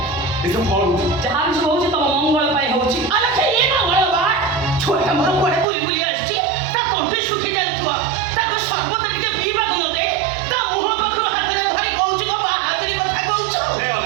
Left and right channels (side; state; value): left; drops out; at 5.7 s